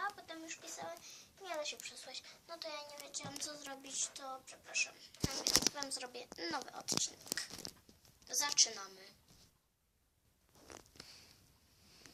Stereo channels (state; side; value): identical; both; correlation 1.00